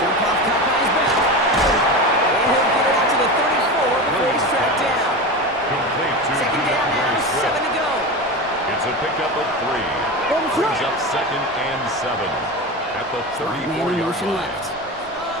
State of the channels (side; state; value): both; normal; correlation 0.24